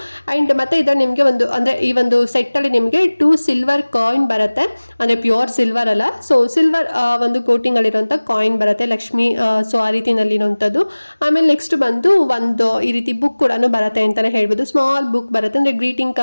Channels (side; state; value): both; inverted; correlation -1.00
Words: ಅಂಡ್ ಮತ್ತೆ ಇದರ ನಿಮ್ಗೆ ಒಂದು ಅಂದ್ರೆ ಈ ಒಂದು ಸೆಟ್ ಅಲ್ಲಿ ನಿಮ್ಗೆ 2 ಸಿಲ್ವರ್ ಕಾಯಿನ್ ಬರುತ್ತೆ, ಅಂದ್ರೆ ಪ್ಯೂರ್ ಸಿಲ್ವರ್ ಅಲ್ಲ. ಸೊ ಸಿಲ್ವರ್ ಒಂದು ಕೋಟಿಂಗ್ ಅಲ್ಲಿರುವಂತ ಕಾಯಿನ್ ಬರುತ್ತೆ, ಲಕ್ಷ್ಮಿ. ಸೊ ಆ ರೀತಿನಲ್ಲಿ ಇರುವಂತದ್ದು. ಆಮೇಲೆ ನೆಕ್ಸ್ಟ್ ಬಂದು ಒಂದು ಈ ರೀತಿ ಬುಕ್ ಕೂಡ ಬರುತ್ತೆ ಅಂತಾನೆ ಹೇಳ್ಬೋದು. ಸ್ಮಾಲ್ ಬುಕ್ ಬರುತ್ತೆ, ಅಂದ್ರೆ ಗ್ರೀಟಿಂಗ್